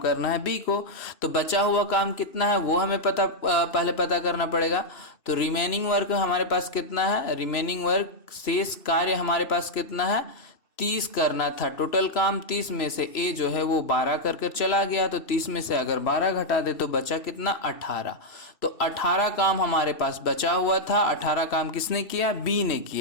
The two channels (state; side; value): late; right; 3.0 ms